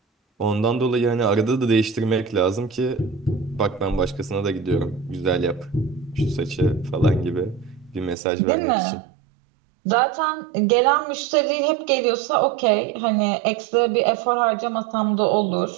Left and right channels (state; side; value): drops out; left; at 8.2 s